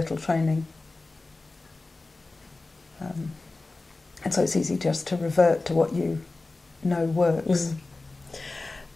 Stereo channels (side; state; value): right; quieter; 3.3 dB